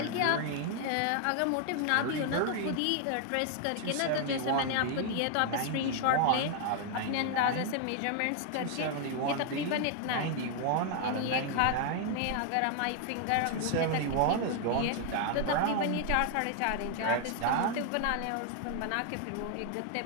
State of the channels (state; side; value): different; both; correlation 0.00